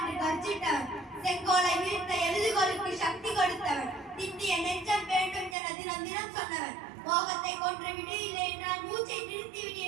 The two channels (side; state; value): left; drops out; at 5.6 s